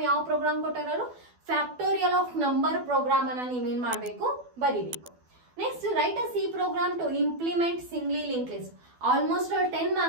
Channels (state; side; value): late; left; 12 ms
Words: ಯಾವ program ಕೊಟ್ಟಾರು, factorial of number program ಅನ್ನ ನೀವೇನ್ ಮಾಡ್ಬೇಕು, ಬರಿಬೇಕು. Next write a C program to implement singly link list. Almost 10